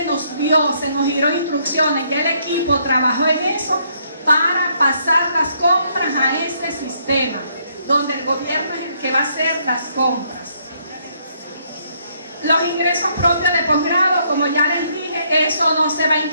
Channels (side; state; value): both; inverted; correlation -0.71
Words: nos vio, se nos dieron instrucciones, ya el equipo trabajó en eso para pasar las compras a ese sistema, donde el gobierno es el que va a hacer las compras. Los ingresos propios de posgrado, como ya les dije, eso no se va a